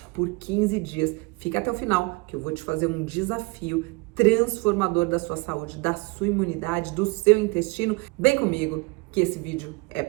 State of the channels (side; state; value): left; quieter; 26.9 dB